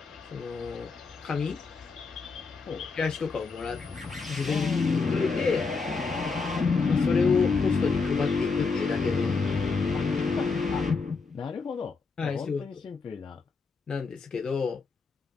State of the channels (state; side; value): quieter; right; 4.6 dB